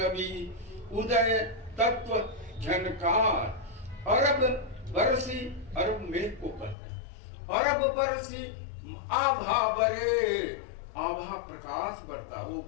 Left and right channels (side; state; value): right; drops out; at 6.8 s